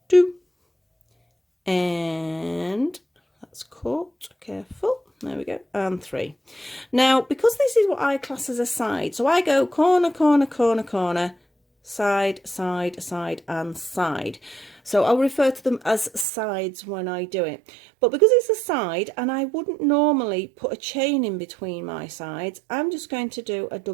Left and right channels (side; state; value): left; drops out; at 16.2 s